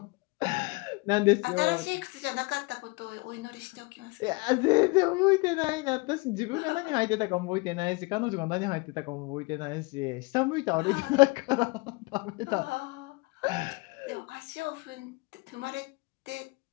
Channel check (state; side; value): quieter; right; 26.2 dB